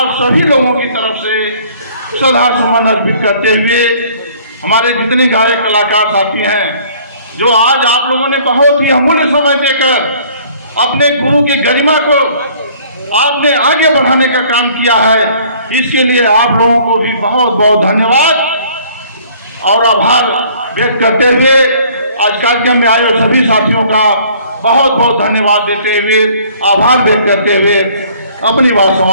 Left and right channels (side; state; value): both; inverted; correlation -0.56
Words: सभी लोगों की तरफ से श्रद्धा सुमन अर्पित करते हुए, हमारे जितने गायक कलाकार साथी हैं, जो आज आप लोगों ने बहुत ही अमूल्य समय देकर अपने गुरु की गरिमा को आपने आगे बढ़ाने का काम किया है। इसके लिए आप लोगों को भी बहुत बहुत धन्यवाद और आभार व्यक्त करते हुए आज कार्यक्रम में आए सभी साथियों का बहुत बहुत धन्यवाद देते हुए, आभार व्यक्त करते हुए अपनी बात